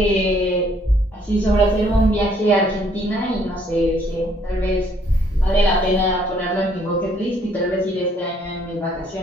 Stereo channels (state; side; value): normal; both; correlation 0.65